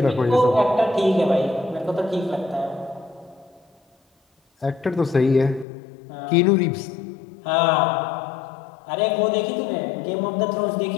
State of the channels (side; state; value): right; drops out; at 5.7 s